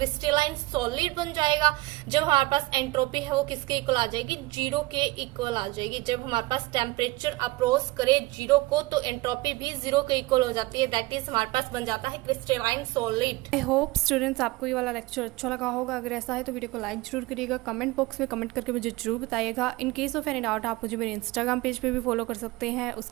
सॉलिड बन जाएगा। जब हमारे पास एंट्रोपी है वो किसके इक्वल आ जाएगी, जीरो के इक्वल आ जाएगी। जब हमारे पास टेम्परेचर अप्रोच करे जीरो को तो एंट्रोपी भी जीरो के इक्वल हो जाती है, दैट इज हमारे पास बन जाता है crystalline solid. I hope students आपको ये वाला लेक्चर अच्छा लगा होगा। अगर ऐसा है तो वीडियो को लाइक जरूर करिएगा, कमेंट बॉक्स में कमेंट करके मुझे जरूर बताइएगा। In case of any doubt आप मुझे मेरे इंस्टाग्राम पेज पे भी फॉलो कर सकते हैं,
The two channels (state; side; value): quieter; left; 20.9 dB